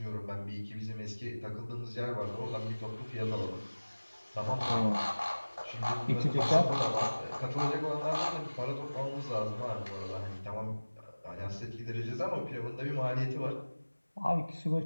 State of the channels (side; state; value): both; inverted; correlation -1.00